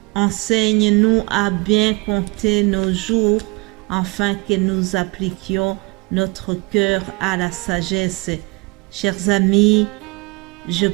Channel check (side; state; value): left; quieter; 27.0 dB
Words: Enseigne-nous à bien compter nos jours, afin que nous appliquions notre cœur à la sagesse. » Chers amis, je